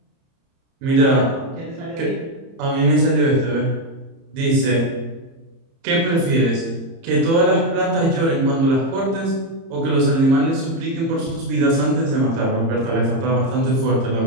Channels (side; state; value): left; late; 30 ms